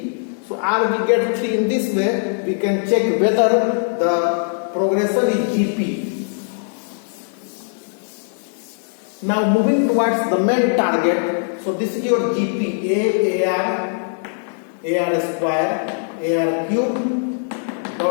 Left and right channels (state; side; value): silent; right; digital silence